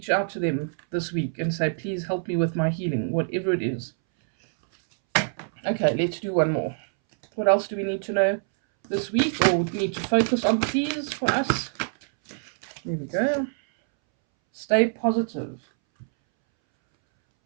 out to them this week and say, please help me with my healing, whatever it is. Okay, let's do one more. What else do we need to know this week or need to focus on, please, for us? There we go. Stay positive.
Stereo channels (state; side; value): silent; left; 62 dB below the other